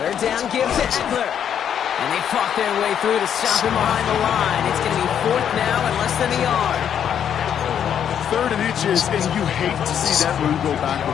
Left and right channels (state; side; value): quieter; right; 8.9 dB